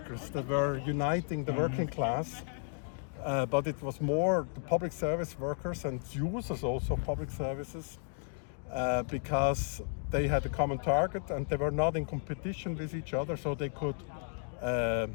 that were uniting the working class, but it was more the public service workers and users also of public services, because they had a common target and they were not in competition with each other, so they could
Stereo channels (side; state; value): right; silent; 55 dB below the other